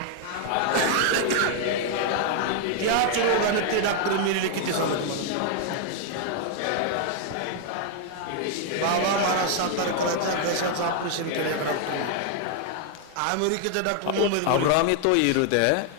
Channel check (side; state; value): both; different; correlation 0.00